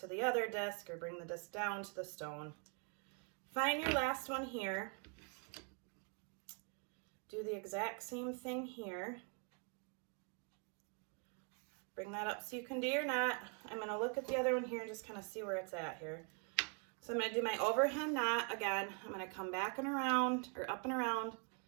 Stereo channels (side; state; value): left; quieter; 38.1 dB